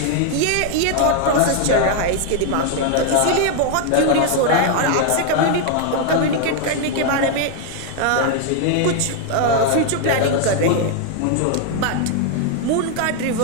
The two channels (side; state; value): both; different; correlation 0.00